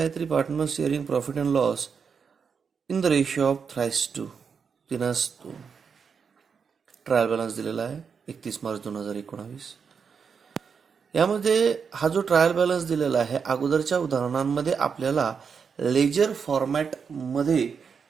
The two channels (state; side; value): quieter; left; 6.2 dB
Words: partners sharing profit and loss in the ratio of 3:2. 3:2. Trial balance दिलेला आहे 31 मार्च 2019. यामध्ये हा जो ट्रायल बॅलन्स दिलेला आहे अगोदरच्या उदाहरणांमध्ये आपल्याला लेजर फॉर्मॅट मध्ये